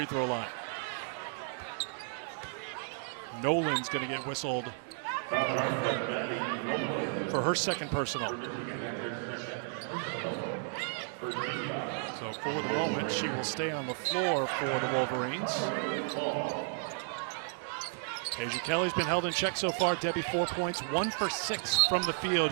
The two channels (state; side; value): silent; left; 56 dB below the other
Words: throw line. Nolan's going to get whistled for her 2nd personal. So for the moment, she will stay on the floor for the Wolverines. Deja Kelly's been held in check so far. Debbie, 4 points, 1 for 6 from the field.